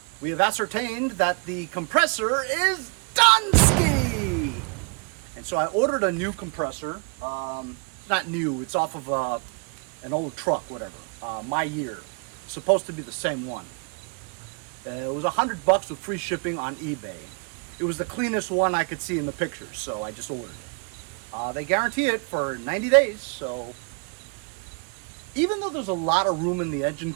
we have ascertained that the compressor is done-ski! And so I ordered a new compressor. It's not new, it's off of an old truck, whatever. My year. It's supposed to be the same one. It was $100 with free shipping on eBay. It was the cleanest one I could see in the pictures, so I just ordered it. They guarantee it for 90 days, so even though there's a lot of room in the engine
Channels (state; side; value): quieter; left; 35.4 dB